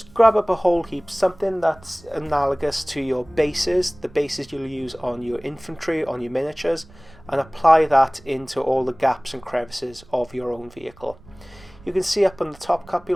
grab up a whole heap, something that's analogous to your bases, the bases you'll use on your infantry, on your miniatures, and apply that into all the gaps and crevices of your own vehicle. You can see up on the top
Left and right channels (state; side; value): noise; right; rumble, 23 dB below the sound